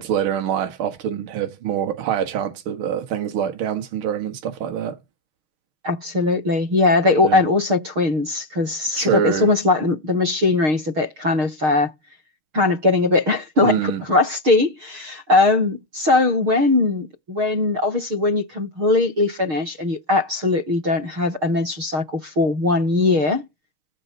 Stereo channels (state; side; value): late; left; 6.5 ms